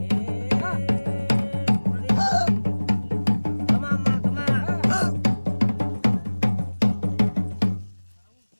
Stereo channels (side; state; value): both; inverted; correlation -1.00